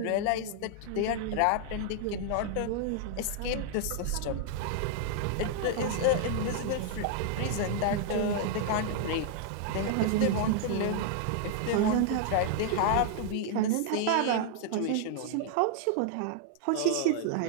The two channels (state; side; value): different; both; correlation 0.00